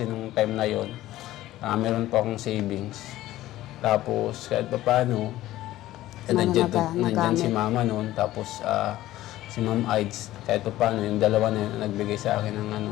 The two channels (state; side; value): quieter; right; 15.2 dB